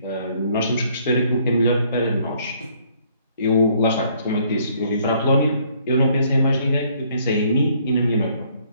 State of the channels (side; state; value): both; inverted; correlation -0.64